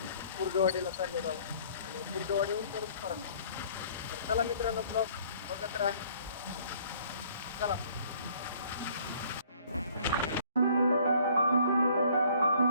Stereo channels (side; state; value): both; inverted; correlation -0.58